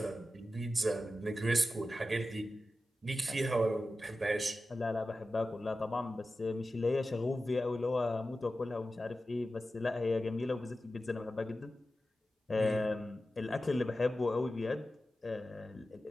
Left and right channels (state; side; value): normal; both; correlation 0.93